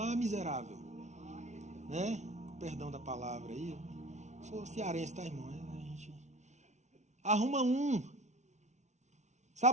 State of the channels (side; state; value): left; late; 0.33 ms